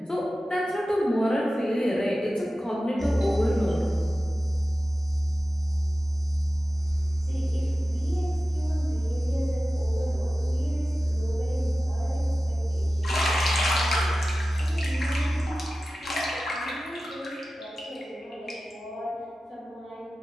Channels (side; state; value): both; normal; correlation 0.95